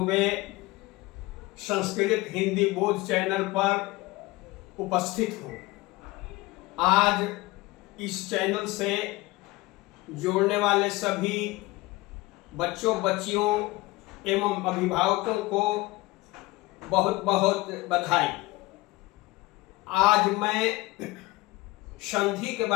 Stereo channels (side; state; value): right; quieter; 20.8 dB